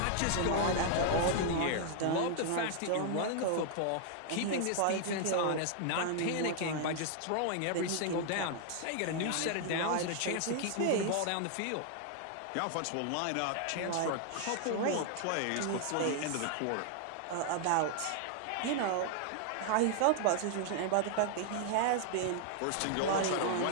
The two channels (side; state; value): both; different; correlation 0.00